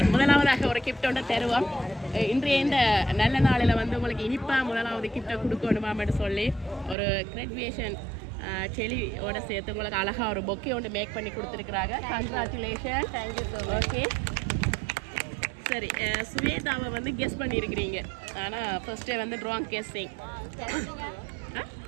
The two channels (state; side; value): drops out; left; at 7.0 s